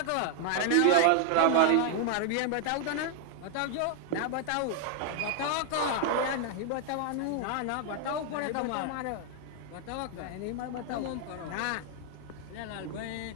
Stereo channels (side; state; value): both; different; correlation 0.00